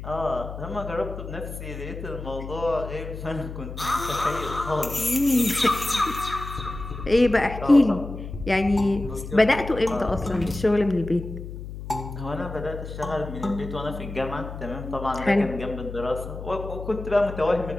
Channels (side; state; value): left; noise; hum, 9 dB below the sound